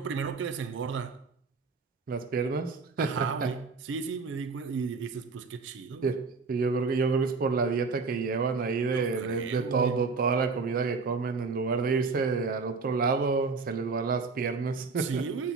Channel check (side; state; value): left; quieter; 4.5 dB